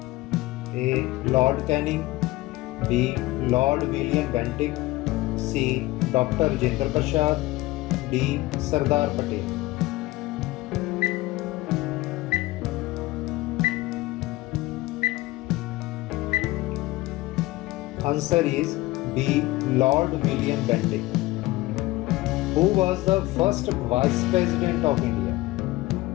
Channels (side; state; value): right; quieter; 19.0 dB